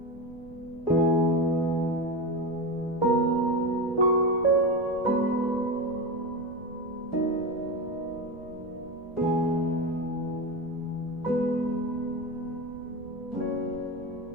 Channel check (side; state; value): right; noise; rumble, 20 dB below the sound